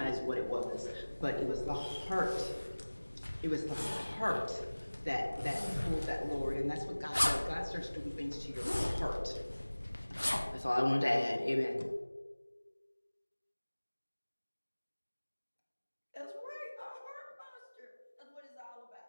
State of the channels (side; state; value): both; inverted; correlation -1.00